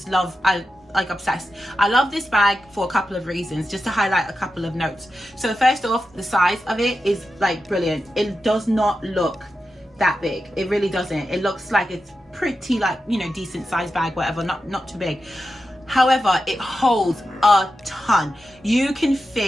love. I like obsessed. I love this bag for a couple of reasons, just to highlight a couple of notes. So first off, the size of it is like brilliant. It does not look that big. It really doesn't. It looks like it's pretty, like, you know, decent size bag, whatever, not too big. However, it holds a ton. You can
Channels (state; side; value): normal; both; correlation 0.90